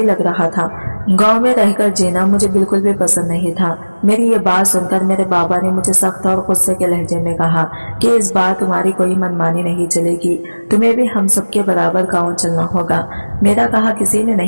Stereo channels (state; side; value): inverted; both; correlation -1.00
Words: लग रहा था। गांव में रहकर जीना मुझे बिल्कुल भी पसंद नहीं था। मेरी ये बात सुनकर मेरे बाबा ने मुझे सख्त और गुस्से के लहजे में कहा कि इस बार तुम्हारी कोई मनमानी नहीं चलेगी, तुम्हें भी हम सबके बराबर गाँव चलना होगा। मेरा कहा किसी ने